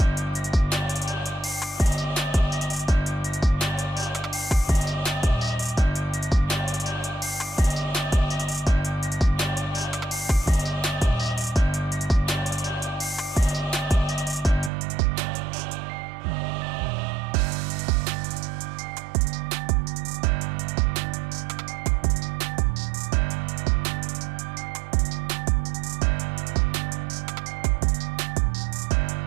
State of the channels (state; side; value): drops out; left; at 14.7 s